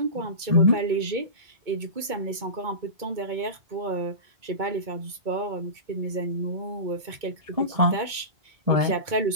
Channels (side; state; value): left; late; 2.2 ms